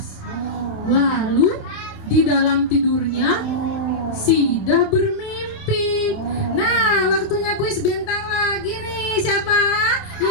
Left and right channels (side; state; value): right; late; 28 ms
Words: Lalu di dalam tidurnya Sida bermimpi. Nah, waktunya kuis bintang lagi nih. Siapa